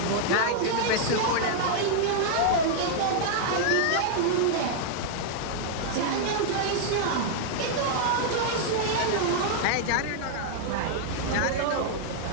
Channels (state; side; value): different; both; correlation -0.01